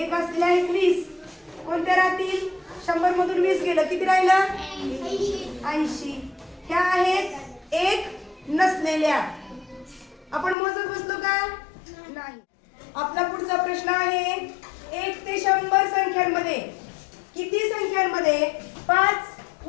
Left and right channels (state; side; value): drops out; right; at 10.6 s